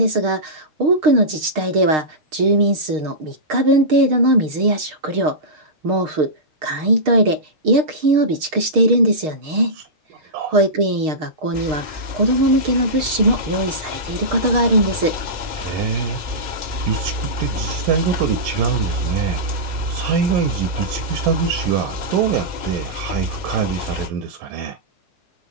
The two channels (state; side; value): late; left; 6.5 ms